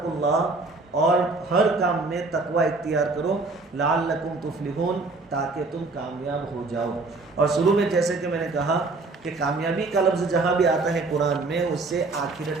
और हर काम में तकवा इख्तियार करो, लअल्लकुम तुफ्लिहून, ताकि तुम कामयाब हो जाओ। और शुरू में जैसे कि मैंने कहा कि कामयाबी का लफ्ज़ जहाँ भी आता है कुरान में, उससे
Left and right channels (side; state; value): left; quieter; 3.6 dB